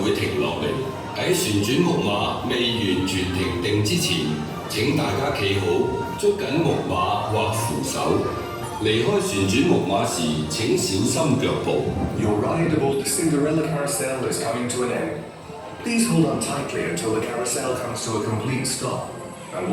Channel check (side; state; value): both; identical; correlation 1.00